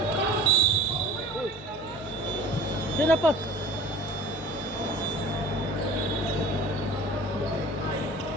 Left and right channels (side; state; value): both; normal; correlation 0.44